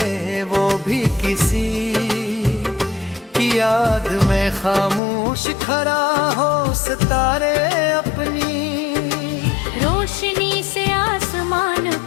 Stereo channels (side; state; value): right; drops out; at 5.0 s